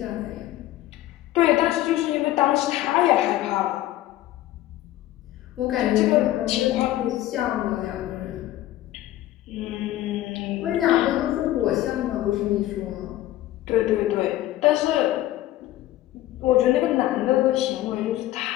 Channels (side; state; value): right; quieter; 14.8 dB